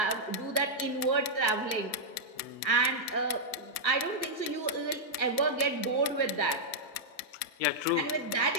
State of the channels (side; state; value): right; late; 1.9 ms